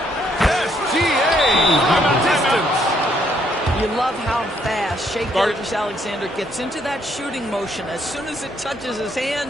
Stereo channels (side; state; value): both; normal; correlation 0.71